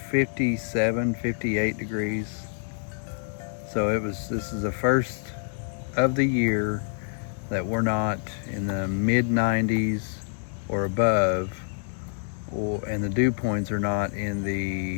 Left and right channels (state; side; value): silent; right; 60 dB below the other